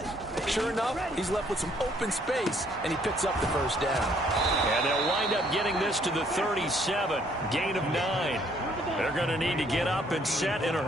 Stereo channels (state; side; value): normal; both; correlation 0.65